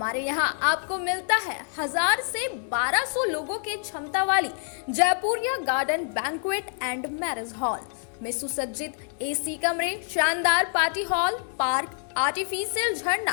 यहाँ आपको मिलता है 1000 से 1200 लोगों की क्षमता वाली Jaipuria garden banquet and marriage hall में सुसज्जित एसी कमरे, शानदार पार्टी हॉल, पार्क, आर्टिफिशियल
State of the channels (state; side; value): silent; right; 61 dB below the other